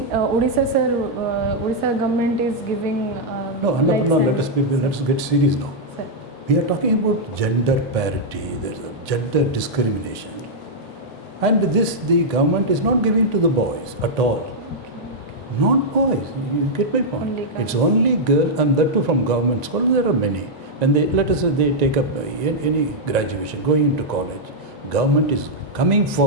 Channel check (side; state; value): both; normal; correlation -0.05